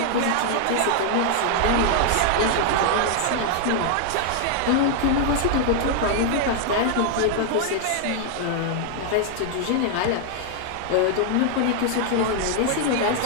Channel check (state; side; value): different; both; correlation 0.00